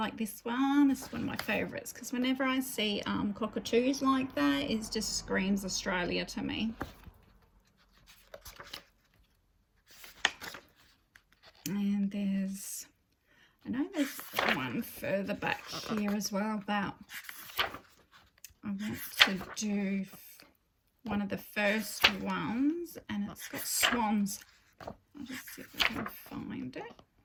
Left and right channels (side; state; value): both; identical; correlation 1.00